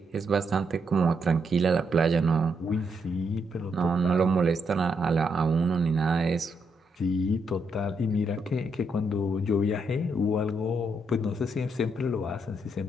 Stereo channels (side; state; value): both; normal; correlation 0.78